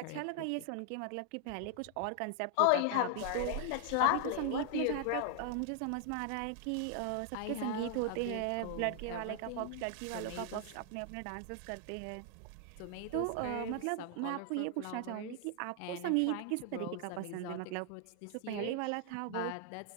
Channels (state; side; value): different; both; correlation 0.00